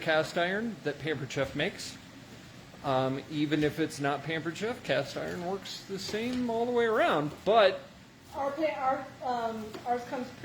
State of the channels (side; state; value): both; identical; correlation 1.00